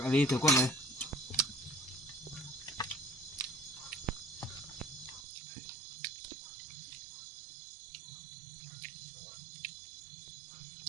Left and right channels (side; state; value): left; drops out; at 5.2 s